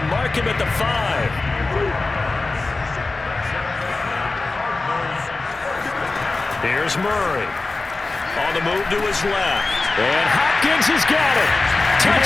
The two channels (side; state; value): right; quieter; 3.5 dB